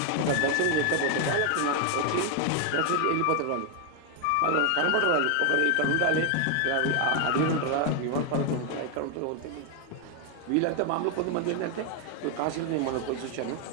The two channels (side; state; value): both; different; correlation 0.01